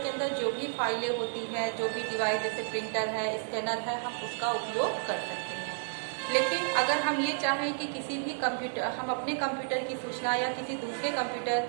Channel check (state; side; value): silent; left; 57 dB below the other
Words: अंदर जो भी फाइलें होती हैं, जो भी डिवाइस जैसे प्रिंटर है, स्कैनर है, हम उसका उपयोग कर सकते हैं। लेकिन अगर हम ये चाहें कि किसी भी कंप्यूटर, हम अपने कंप्यूटर की सूचना या किसी दूसरे